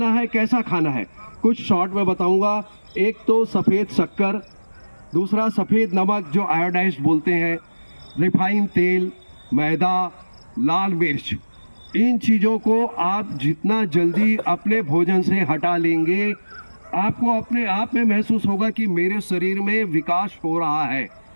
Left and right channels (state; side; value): inverted; both; correlation -1.00